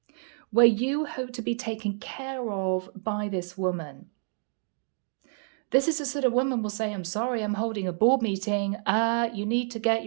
where you hope to be taken care of by this woman. This is the sort of woman will say, I'm sorry, I'm holding a board meeting. You need to get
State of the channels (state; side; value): silent; left; 57 dB below the other